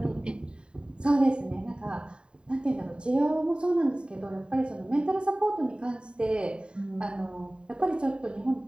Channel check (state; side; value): late; left; 0.051 ms